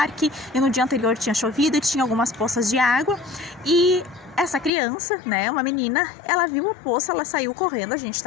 e no dia anterior tinha chovido e tinha algumas poças de água, e essa criança, né, uma menina, ela viu a poça, ela saiu correndo, a gente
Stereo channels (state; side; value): drops out; right; at 4.7 s